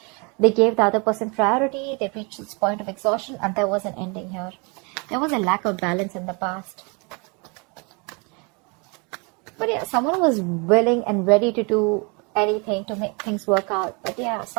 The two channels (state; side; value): quieter; left; 30.7 dB